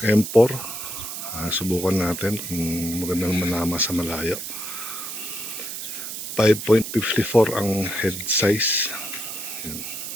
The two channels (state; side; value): noise; right; hiss, 7 dB below the sound